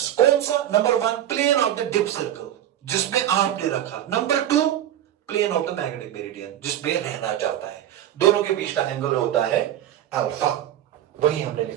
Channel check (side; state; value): left; quieter; 11.7 dB